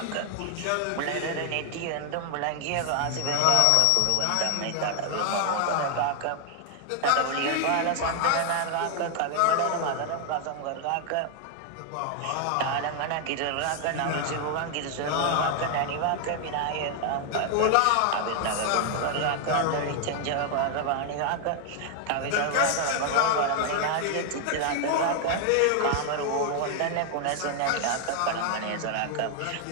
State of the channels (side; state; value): both; different; correlation 0.00